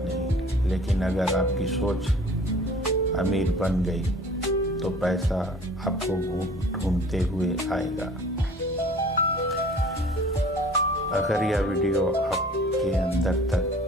नहीं, लेकिन अगर आपकी सोच अमीर बन गई तो पैसा आपको ढूंढते हुए आएगा। अगर यह वीडियो आपके अंदर तक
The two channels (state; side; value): normal; both; correlation 0.48